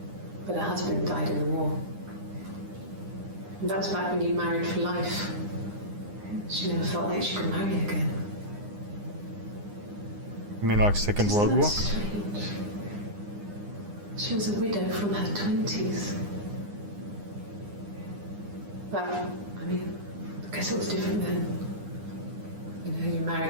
but her husband died in the war. And that was back when you married for life. She never felt like she could marry again. You mean like Second World Isn't War? that strange? She was a widow from her 20s. But, I mean, I guess it was different then. You know, you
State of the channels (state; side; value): late; left; 9.8 ms